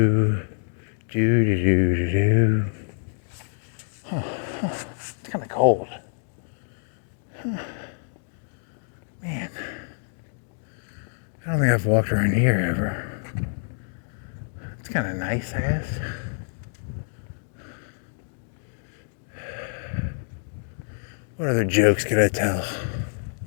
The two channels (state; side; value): silent; right; digital silence